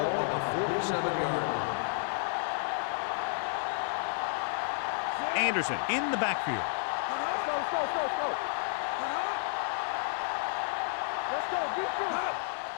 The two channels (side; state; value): right; silent; digital silence